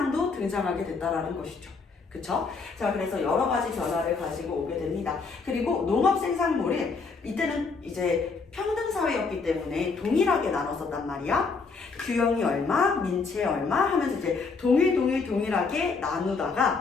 등장하게 됐다라는 것이죠. 그쵸? 자, 그래서 여러 가지 변화를 가지고 오게 됩니다. 그리고 농업 생산물이 이때는 이제 평등사회였기 때문에 동일하게 나눴었단 말이야. 규영이 얼마, 민채 얼마 하면서 이제 동일하게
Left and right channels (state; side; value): quieter; right; 4.6 dB